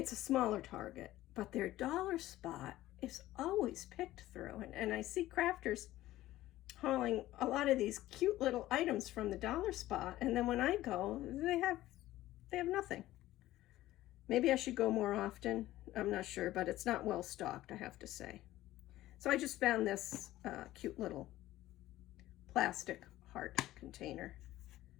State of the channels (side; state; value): right; quieter; 15.4 dB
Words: a smaller Target, but their dollar spot is always picked through. And I see crafters hauling a lot of these cute little items from the dollar spot, and then when I go, they have nothing. Maybe I should go more often. I'm not sure, but it's not well stocked, I have to say. So I just found this cute little plastic heart container.